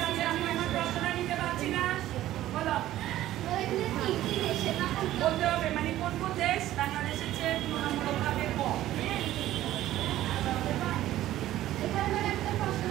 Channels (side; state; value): left; quieter; 14.1 dB